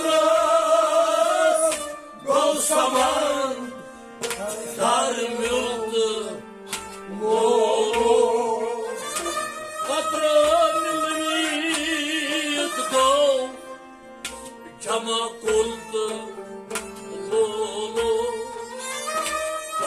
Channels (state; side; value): identical; both; correlation 1.00